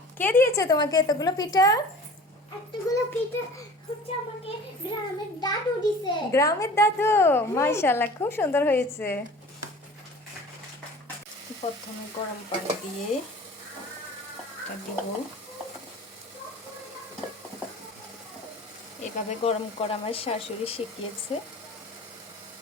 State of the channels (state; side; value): normal; both; correlation 0.42